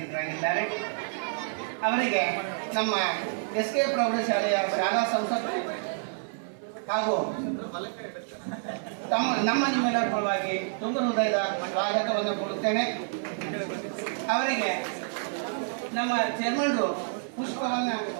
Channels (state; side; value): silent; left; 59 dB below the other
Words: ಅವರಿಗೆ ನಮ್ಮ SK ಪ್ರೌಢಶಾಲೆಯ ಶಾಲಾ ಸಂಸತ್ತು ಹಾಗೂ ನಮ್ಮ ನಿಮ್ಮೆಲ್ಲರ ಪರವಾಗಿ ತುಂಬ ಹೃದಯದ ಸ್ವಾಗತವನ್ನು ಕೊಡುತ್ತೇನೆ. ಅವರಿಗೆ ನಮ್ಮ ಚೇರ್ಮನ್ರು ಪುಷ್ಪವನ್ನು